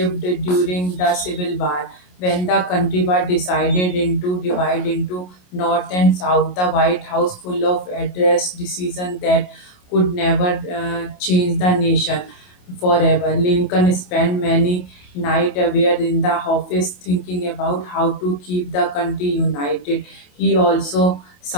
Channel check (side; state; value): right; late; 28 ms